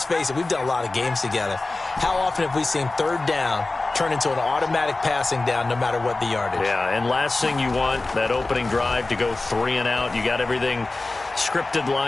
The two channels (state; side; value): quieter; right; 3.2 dB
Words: face it, we've done a lot of games together. How often have we seen 3rd down turn into an automatic passing down no matter what the yardage? Yeah, and last thing you want, that opening drive to go 3 and out. You got everything scripted,